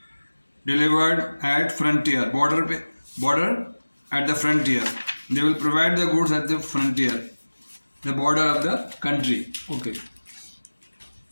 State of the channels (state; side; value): inverted; both; correlation -1.00